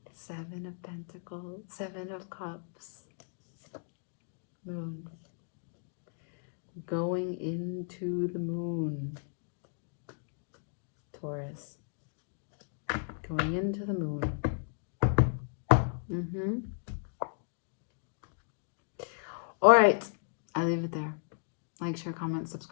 Seven of Pentacles, Seven of Cups, Moon. Going into the moon, Taurus. Going into the moon. All right, I leave it there. Like, share, comment,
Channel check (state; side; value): silent; right; digital silence